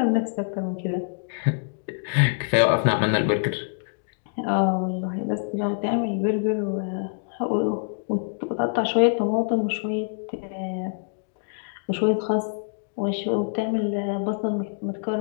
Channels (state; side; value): silent; right; digital silence